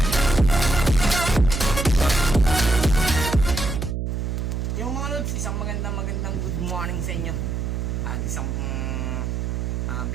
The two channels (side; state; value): right; noise; hum, 2 dB below the sound